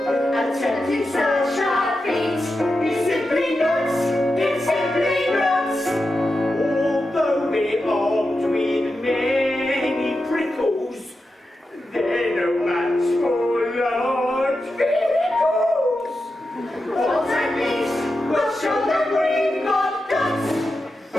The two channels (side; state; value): both; normal; correlation 0.90